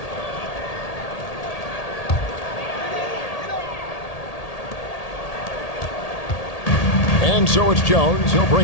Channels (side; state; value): right; late; 1.8 ms